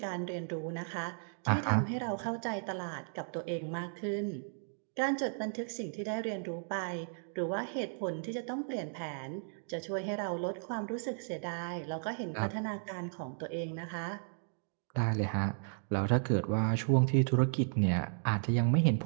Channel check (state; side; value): silent; left; digital silence